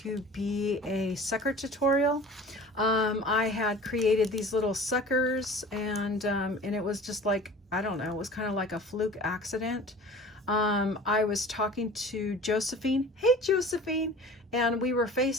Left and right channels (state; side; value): normal; both; correlation 0.42